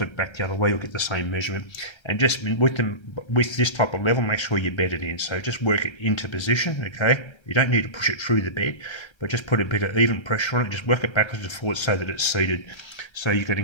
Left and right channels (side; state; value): right; late; 1.3 ms